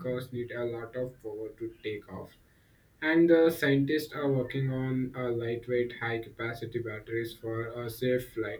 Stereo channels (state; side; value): identical; both; correlation 1.00